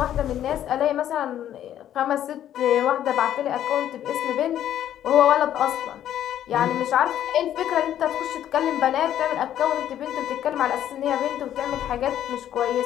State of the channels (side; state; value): right; quieter; 11.2 dB